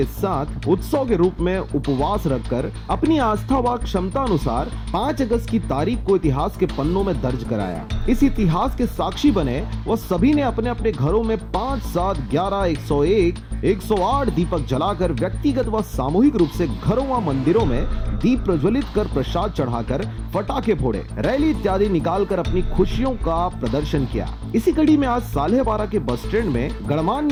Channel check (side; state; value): both; identical; correlation 1.00